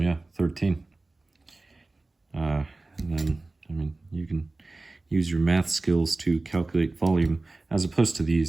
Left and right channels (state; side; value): quieter; left; 3.2 dB